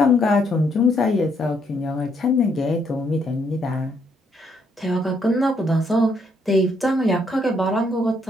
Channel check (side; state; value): both; normal; correlation 0.72